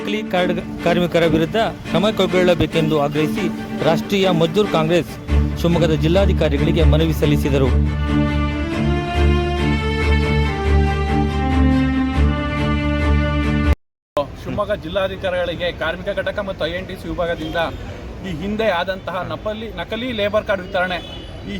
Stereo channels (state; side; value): identical; both; correlation 1.00